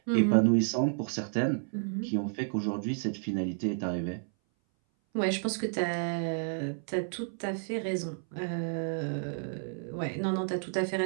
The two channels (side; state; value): left; silent; 57 dB below the other